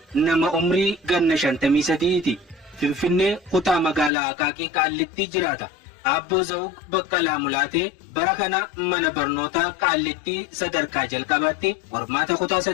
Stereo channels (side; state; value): right; drops out; at 4.1 s